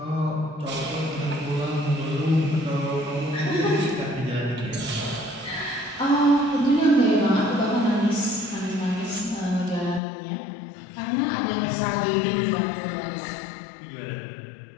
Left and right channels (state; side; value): drops out; right; at 10.0 s